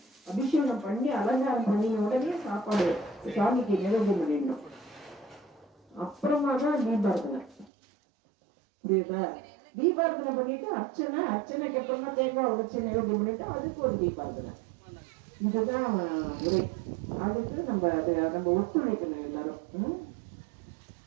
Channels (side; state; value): left; drops out; at 7.7 s